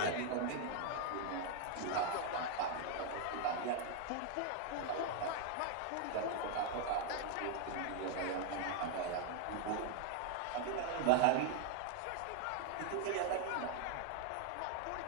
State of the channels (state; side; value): different; both; correlation 0.00